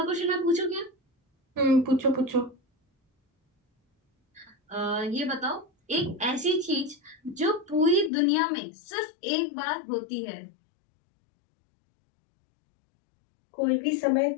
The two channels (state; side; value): drops out; right; at 8.1 s